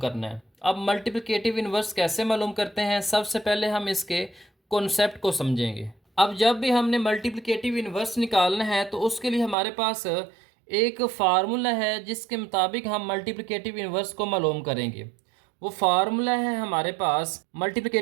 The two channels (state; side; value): drops out; left; at 9.6 s